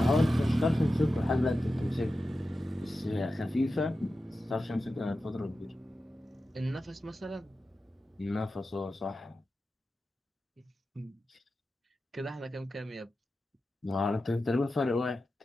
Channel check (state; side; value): normal; both; correlation 0.92